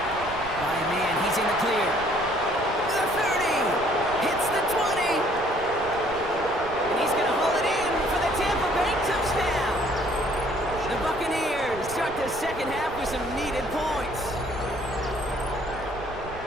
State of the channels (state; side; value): noise; right; rumble, 14 dB below the sound